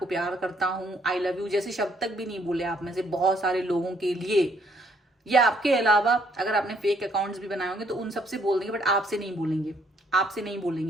प्यार करता हूं, आई लव यू जैसे शब्द तक भी नहीं बोले आप में से बहुत सारे लोगों के लिए, या आपके अलावा अगर आपने फेक अकाउंट्स भी बनाए होंगे तो उन सबसे बोल देंगे, बट आपसे नहीं बोलेंगे, आपसे नहीं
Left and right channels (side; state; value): both; normal; correlation 0.68